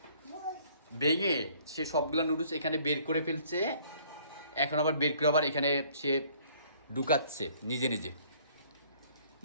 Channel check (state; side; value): inverted; both; correlation -0.58